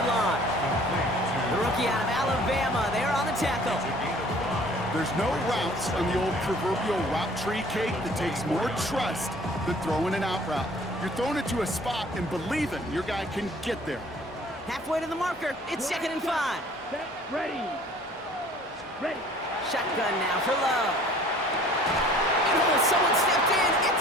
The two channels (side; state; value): both; normal; correlation 0.52